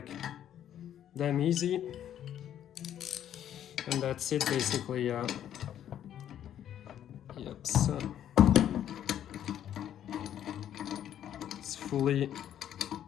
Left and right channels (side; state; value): right; quieter; 10.6 dB